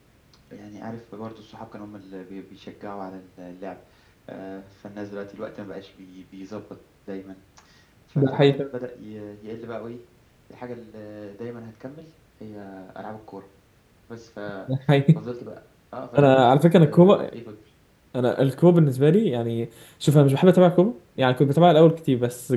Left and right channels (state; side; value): identical; both; correlation 1.00